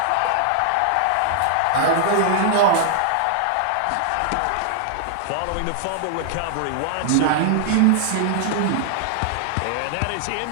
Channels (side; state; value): both; different; correlation -0.01